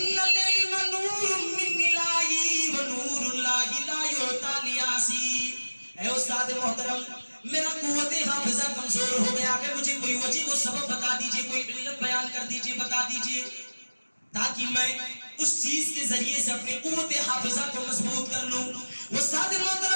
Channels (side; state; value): both; inverted; correlation -1.00